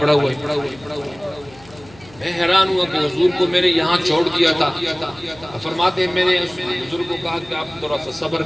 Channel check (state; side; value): noise; left; hum, 23 dB below the sound